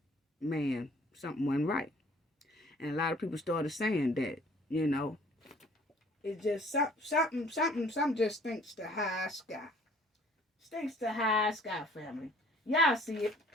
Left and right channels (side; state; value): both; normal; correlation 0.55